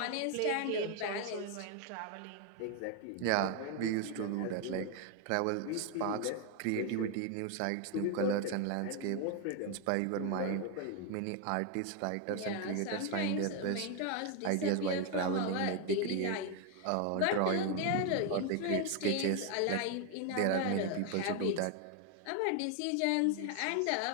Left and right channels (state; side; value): different; both; correlation 0.01